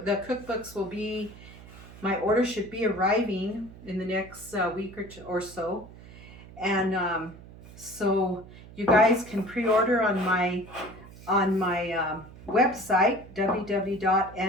The cookbooks will be, my order should be arriving in the next week or so. And so you guys can pre-order on my website,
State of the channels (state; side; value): noise; right; hum, 18 dB below the sound